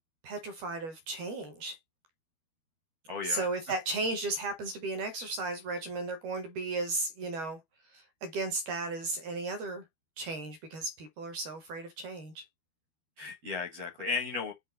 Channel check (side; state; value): left; late; 12 ms